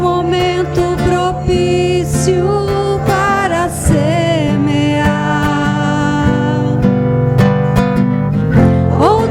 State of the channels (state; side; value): identical; both; correlation 1.00